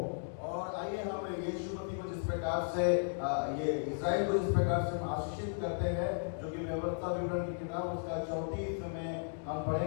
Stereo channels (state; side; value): silent; right; digital silence